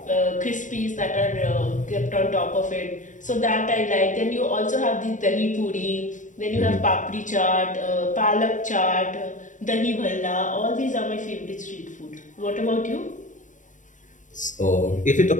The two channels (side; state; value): right; late; 0.37 ms